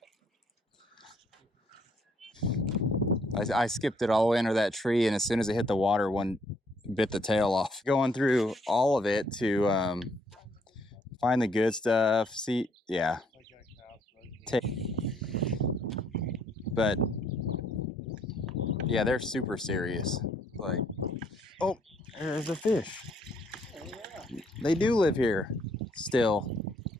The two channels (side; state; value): both; normal; correlation 0.68